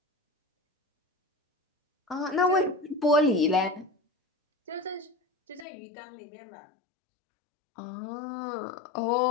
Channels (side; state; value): right; drops out; at 5.7 s